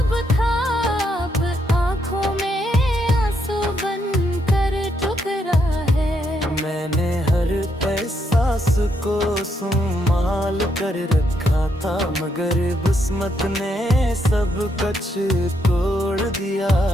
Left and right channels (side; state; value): both; normal; correlation 0.77